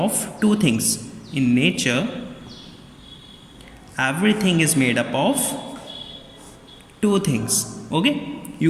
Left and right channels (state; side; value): identical; both; correlation 1.00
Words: two things. In nature everything is made up of two things. Okay,